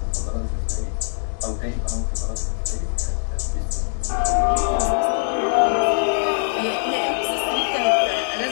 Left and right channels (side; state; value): right; silent; digital silence